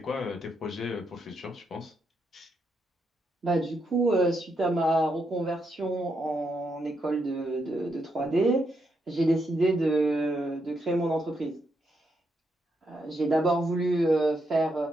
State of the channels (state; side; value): normal; both; correlation 0.80